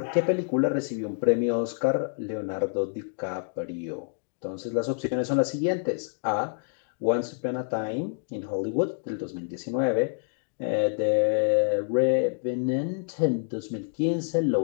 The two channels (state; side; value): silent; right; digital silence